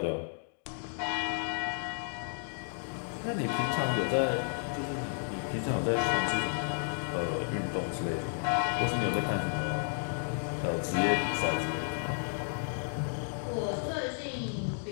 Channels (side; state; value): right; silent; digital silence